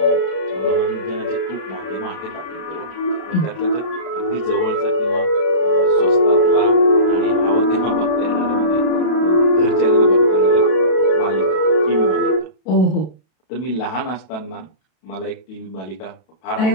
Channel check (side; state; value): right; late; 32 ms